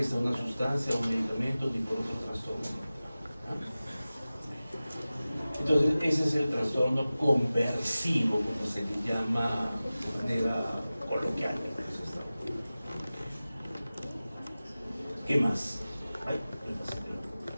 de una sustancia o medicamento ni por otros trastornos. Entonces, ese es el trastorno conversivo, como se le llama de manera coloquial. ¿Qué más?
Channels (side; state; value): both; inverted; correlation -0.96